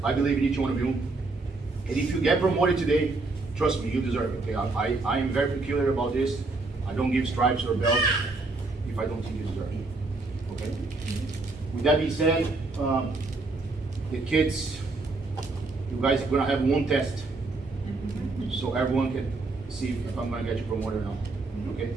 I believe in each one of you. And if you get promoted today, trust me, you deserve it. Okay, I am very peculiar about this. I don't give stripes or belts if I don't think you deserve it. Okay. With that being said, the kids, you guys are gonna have one test, so everyone can see if I'm gonna get you promoted or not. Okay.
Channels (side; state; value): left; quieter; 3.5 dB